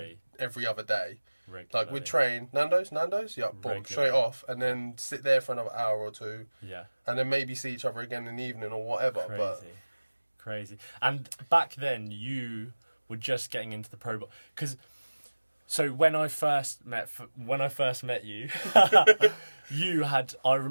every other day. Regularly. Like we'd train Nando's, yeah, boom, straight off, and then sit there for another hour or two. Yeah. And then maybe see each other again in the evening or whatever. Crazy. And back then you were just getting into the pro ball, because so when I first met you, I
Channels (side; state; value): both; inverted; correlation -1.00